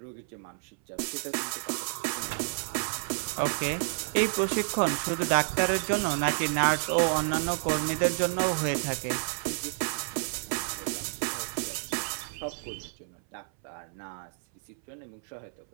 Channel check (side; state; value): left; silent; 58 dB below the other